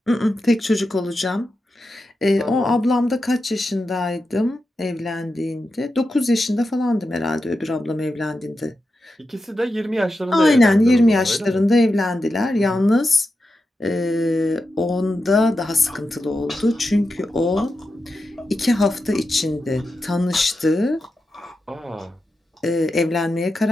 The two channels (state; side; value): normal; both; correlation 0.89